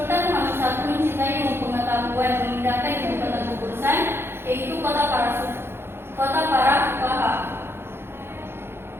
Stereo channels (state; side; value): late; left; 0.11 ms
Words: Muhammad I mencintai ilmu pengetahuan, memindahkan ibu kota keputusan yaitu kota para fuqaha.